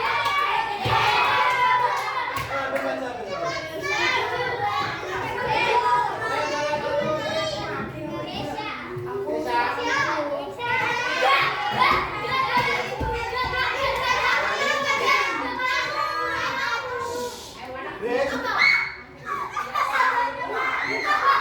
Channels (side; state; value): both; identical; correlation 1.00